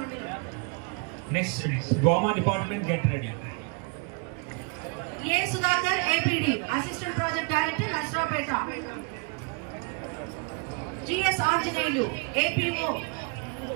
మండలం. నెక్స్ట్ గోమా department get ready. A Sudhakar APD assistant project director Narasaraopet. GS Anjaneyulu APO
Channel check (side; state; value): left; quieter; 33.4 dB